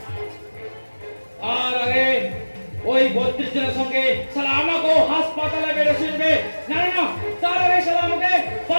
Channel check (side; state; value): both; inverted; correlation -1.00